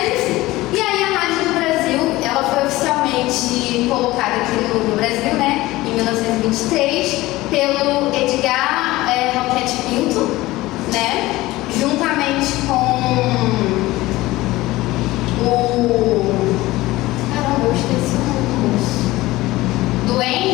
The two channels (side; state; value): right; quieter; 18.5 dB